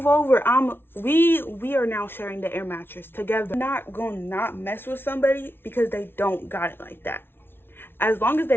over. We are now sharing the air mattress together. I'm not gonna not mess with somebody because they don't got it like that. As long as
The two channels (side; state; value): right; late; 0.11 ms